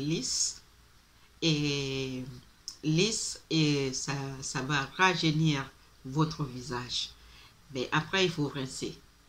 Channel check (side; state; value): both; identical; correlation 1.00